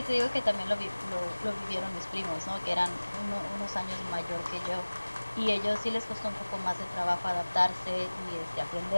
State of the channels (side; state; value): both; inverted; correlation -1.00